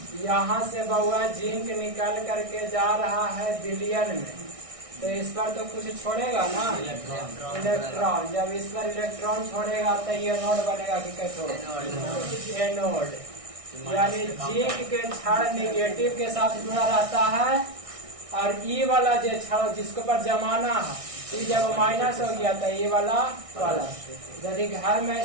यहाँ से बउआ जिंक निकल करके जा रहा है विलयन में, तो इस पर तो कुछ छोड़ेगा ना, इलेक्ट्रॉन। जब इस पर इलेक्ट्रॉन छोड़ेगा तो ये नोड बनेगा कि कैसे एनोड, यानी जिंक के छड़ निगेटिव के साथ जुड़ा रहता है, और ई वाला जो छड़ जिसके ऊपर जमाना है, ये जब माइनस हो गया तो ये वाला प्लस। यदि घर में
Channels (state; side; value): late; left; 1.6 ms